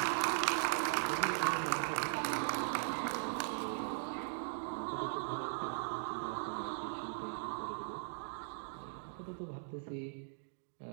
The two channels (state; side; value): silent; left; digital silence